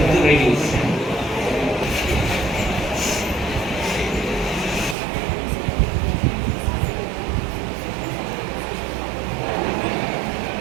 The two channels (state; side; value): drops out; left; at 5.0 s